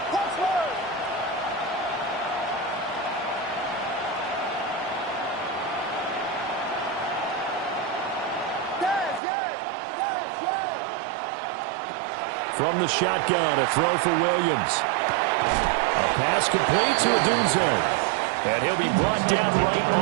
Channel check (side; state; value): left; drops out; at 9.2 s